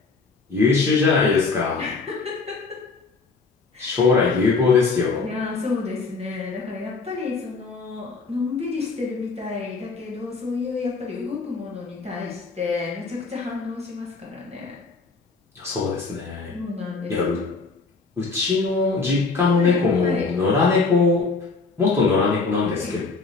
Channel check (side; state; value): right; quieter; 4.2 dB